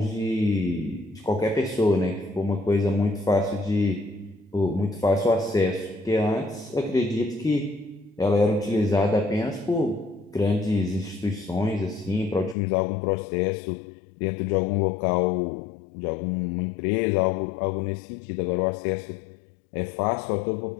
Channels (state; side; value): drops out; right; at 12.6 s